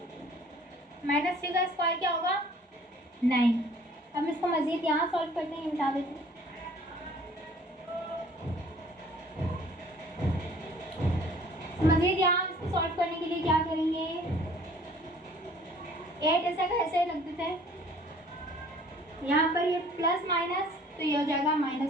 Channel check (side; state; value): both; normal; correlation 0.53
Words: -3 का स्क्वायर क्या होगा 9। अब इसको मज़ीद यहाँ सॉल्व करते हैं, मिटा देते हैं। मज़ीद यहाँ इसको सॉल्व करने के लिए क्या करेंगे, 8 ऐसा का ऐसे रख देते हैं, यहाँ पर ये प्लस माइनस तो ये हो जाएगा